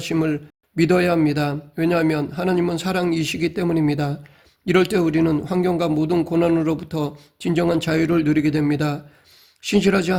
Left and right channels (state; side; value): identical; both; correlation 1.00